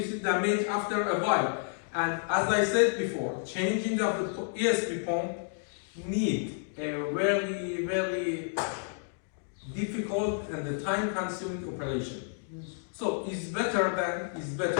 damage after a while. And as I said before, changing of the ESP pump need a very, very difficult and the time-consuming operation. So it's better.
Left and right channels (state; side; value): silent; right; digital silence